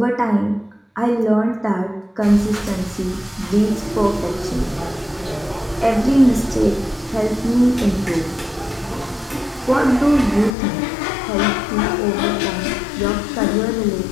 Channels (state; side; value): drops out; right; at 10.5 s